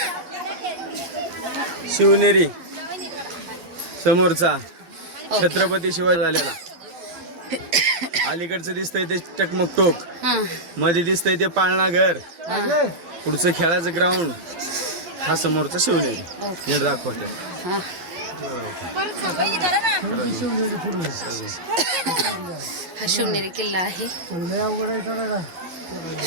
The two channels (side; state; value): left; late; 12 ms